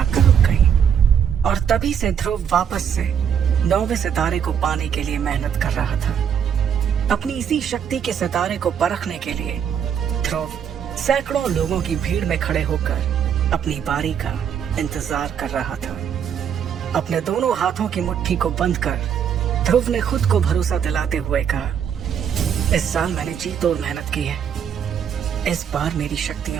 रुक गईं। और तभी से ध्रुव वापस से 9वें सितारे को पाने के लिए मेहनत कर रहा था। अपनी इसी शक्ति के सितारे को परखने के लिए ध्रुव सैकड़ों लोगों की भीड़ में खड़े होकर अपनी बारी का इंतजार कर रहा था। अपने दोनों हाथों की मुट्ठी को बंद कर ध्रुव ने खुद को भरोसा दिलाते हुए कहा, इस साल मैंने जी तोड़ मेहनत की है। इस बार मेरी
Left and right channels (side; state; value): left; quieter; 8.2 dB